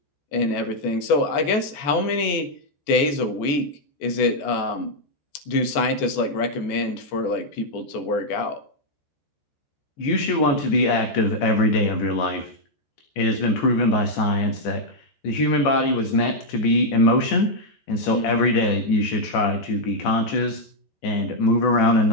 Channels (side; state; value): right; late; 14 ms